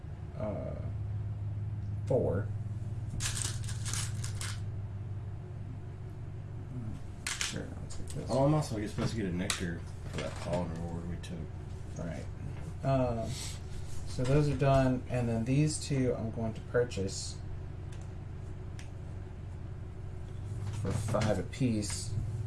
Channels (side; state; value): both; identical; correlation 1.00